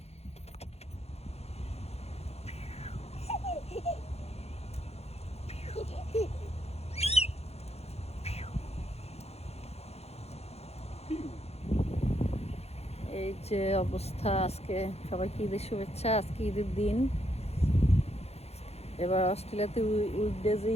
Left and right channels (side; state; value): right; late; 0.30 ms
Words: এই যে অবস্থা। আজকে সবাইকে ঈদের শুভেচ্ছা। আজকে ঈদের দিন। এবার অস্ট্রেলিয়াতে উইকডেজে